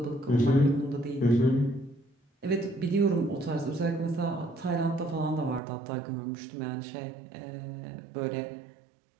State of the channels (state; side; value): drops out; left; at 5.6 s